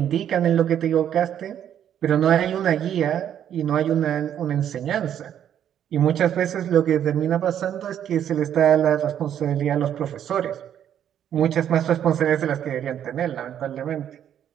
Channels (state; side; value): quieter; left; 9.9 dB